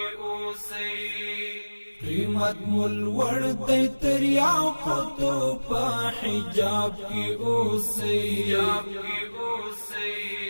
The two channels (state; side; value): inverted; both; correlation -1.00